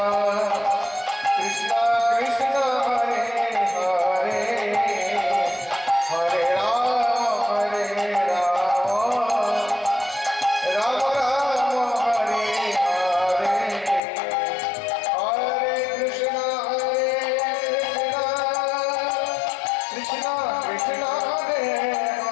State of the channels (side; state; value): right; drops out; at 14.0 s